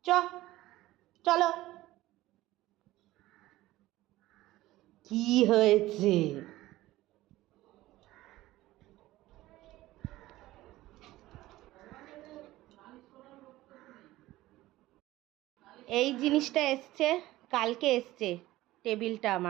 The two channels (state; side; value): quieter; left; 16.8 dB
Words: চ, চলো। কি হয়েছে? এই জিনিসটা এসছে, কালকে এসছে টেবিলটা